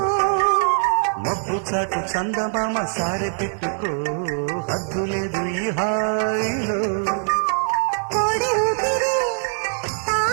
మబ్బు చాటు చందమామ సారె పెట్టుకో హద్దు లేదు ఈ హాయిలో కోడి ఊపిరి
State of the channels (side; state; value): left; silent; 64 dB below the other